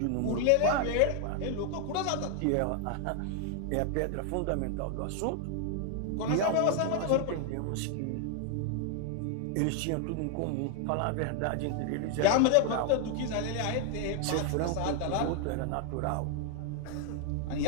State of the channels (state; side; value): different; both; correlation 0.00